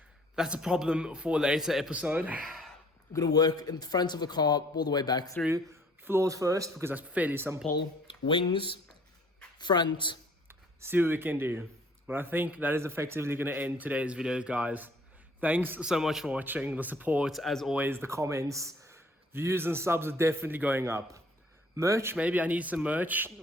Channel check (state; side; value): normal; both; correlation 0.57